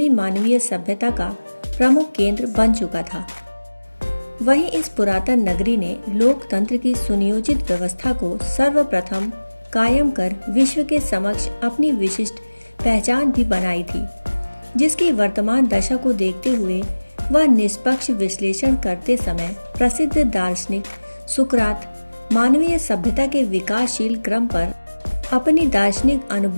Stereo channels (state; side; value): inverted; both; correlation -1.00